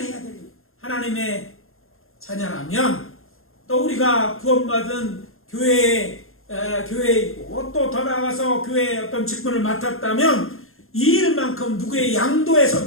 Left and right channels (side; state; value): right; late; 0.61 ms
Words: 되는 거예요. 하나님의 자녀라면 또 우리가 구원받은 교회이고 또 더 나아가서 교회의 어떤 직분을 맡았다면 이 일만큼 누구의